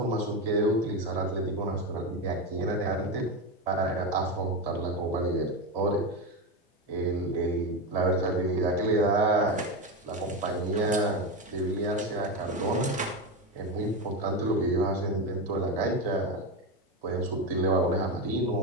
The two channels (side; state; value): both; normal; correlation 0.15